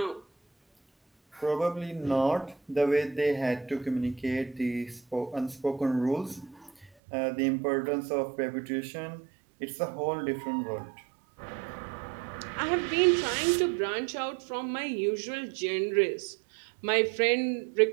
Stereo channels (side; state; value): left; drops out; at 6.9 s